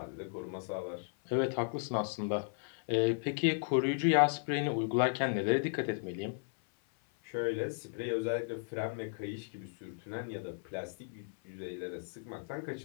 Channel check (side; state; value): right; silent; 54 dB below the other